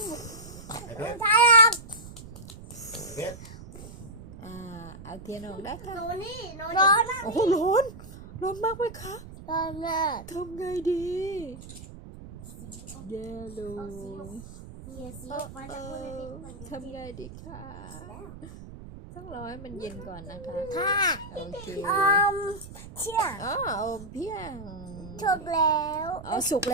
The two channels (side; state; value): right; noise; rumble, 15 dB below the sound